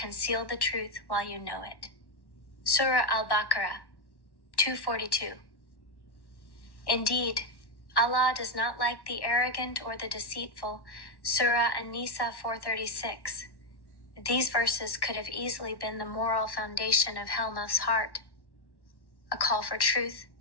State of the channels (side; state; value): right; late; 1.1 ms